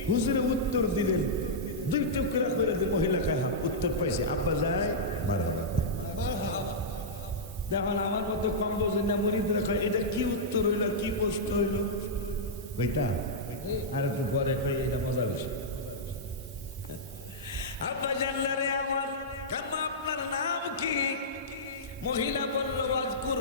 হুজুরে উত্তর দিলেন, 2 টুকরা করে দিল। মহিলা কাহা উত্তর পাইছে, আব্বা যায় মারহাবা। দেখুন আমার মতো কম বোঝেন না মুরিদরা কয়, এটা কি উত্তর হইল, কি প্রশ্ন হইল? কইতা আর একটু পরে কই, এটা মজা বেশি। আব্বা জানলা রে আমার, কাম্মা আপনার নাম কি? মহিলা বলল, ওয়াজকুর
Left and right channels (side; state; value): both; normal; correlation -0.11